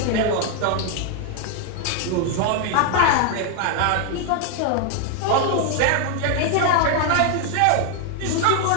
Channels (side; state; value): both; different; correlation 0.00